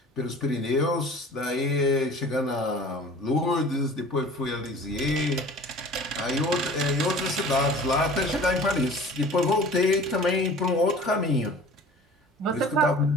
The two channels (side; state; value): both; normal; correlation 0.44